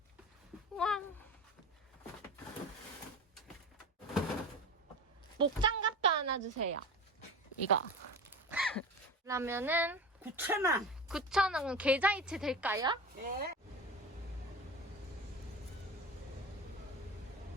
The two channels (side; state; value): both; normal; correlation 0.30